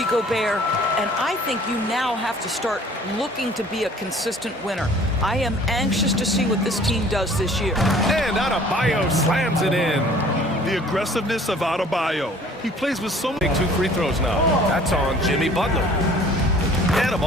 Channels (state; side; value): normal; both; correlation 0.52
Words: Gobert, and I think you now have to start looking to be a consistent winner. I am anxious to see what this team does this year. And Adebayo slams it in. The aggressiveness of Adebayo. He plays with so many... 2 free throws now. That's on Jimmy Butler. And a